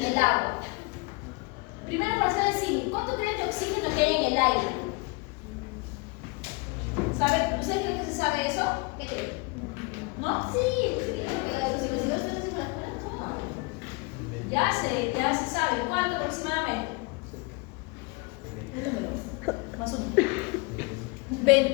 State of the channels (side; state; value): right; quieter; 27.7 dB